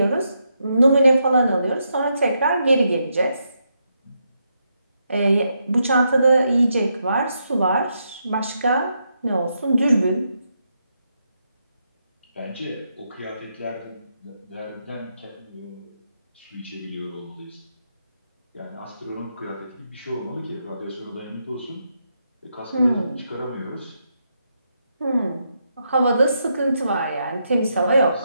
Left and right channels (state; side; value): inverted; both; correlation -0.81